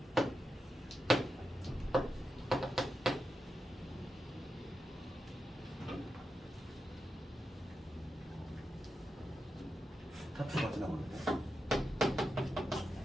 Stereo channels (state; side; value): normal; both; correlation 0.88